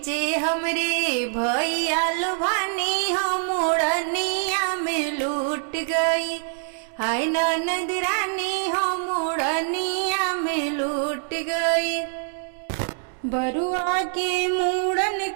हमरे भैया लुभानी हो, मूड़निया में लूट गई। हाय ननद रानी हो, मूड़निया में लूट गई। बरुआ के मूड़न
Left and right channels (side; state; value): left; silent; 62 dB below the other